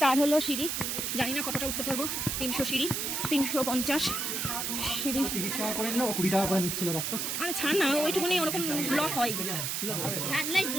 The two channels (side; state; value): right; noise; hiss, 1 dB below the sound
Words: হলো সিঁড়ি জানি না কতটা উঠতে পারবো 300 সিঁড়ি 350 সিঁড়ি 30 টাকা করে নিলো 20 টাকা করে নিচ্ছিল দেখো আরে ছাড় না ওইটুকুনি ওরকম লস হয়